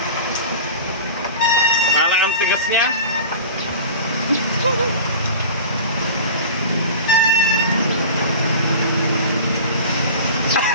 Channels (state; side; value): inverted; both; correlation -0.36